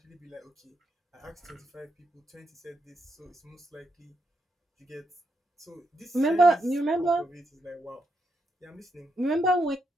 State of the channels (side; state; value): both; normal; correlation 0.81